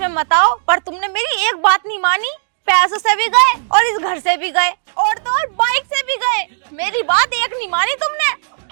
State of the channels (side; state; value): left; silent; digital silence